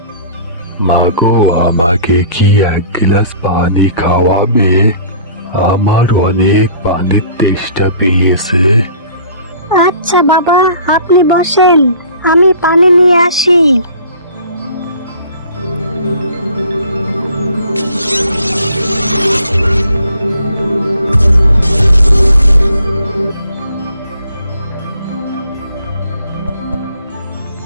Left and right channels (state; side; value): inverted; both; correlation -0.52